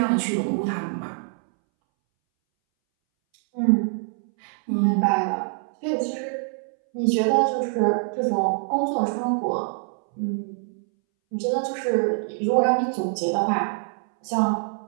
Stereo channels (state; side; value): silent; left; 61 dB below the other